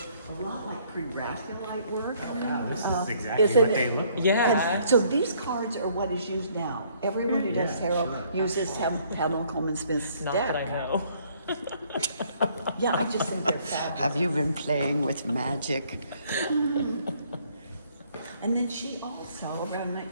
a lot like pre-Raphaelite work. Oh, God, this is exactly Isn't what they it? look like. Yeah. And so these cards are what is used now. Everyone who does tarot uses Pamela Coleman Smith's Not deck. that I know. Yeah, I just think they're fabulous. Have you been playing with magic? And then she also, around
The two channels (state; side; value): inverted; both; correlation -0.64